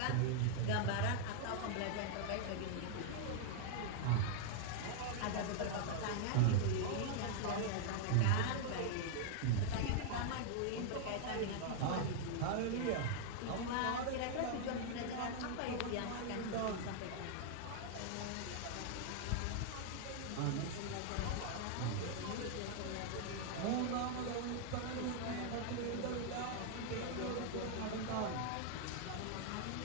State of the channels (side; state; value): both; different; correlation 0.00